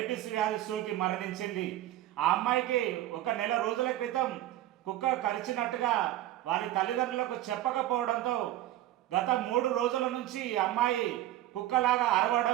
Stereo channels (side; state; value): left; quieter; 14.2 dB